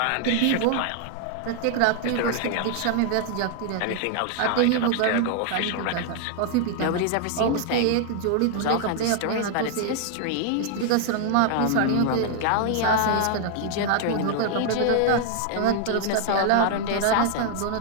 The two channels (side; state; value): both; different; correlation 0.00